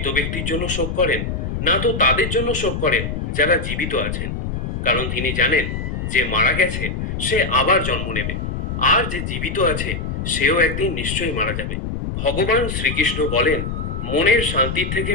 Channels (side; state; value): left; noise; rumble, 4 dB below the sound